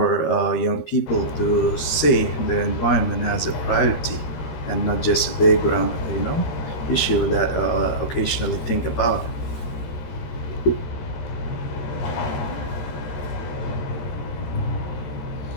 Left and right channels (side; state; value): right; late; 13 ms